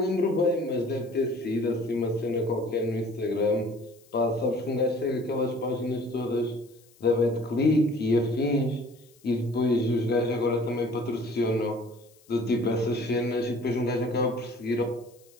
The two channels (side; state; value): left; noise; hiss, 29 dB below the sound